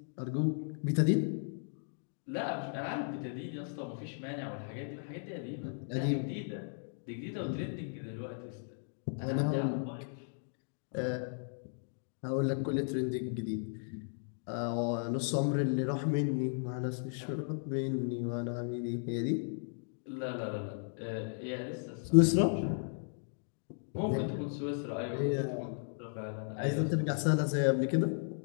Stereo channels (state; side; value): silent; right; digital silence